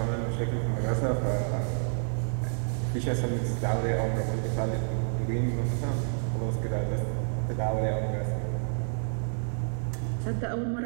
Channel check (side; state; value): left; silent; 58 dB below the other